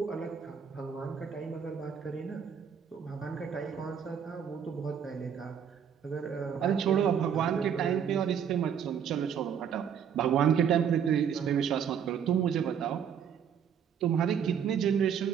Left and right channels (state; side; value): quieter; left; 7.9 dB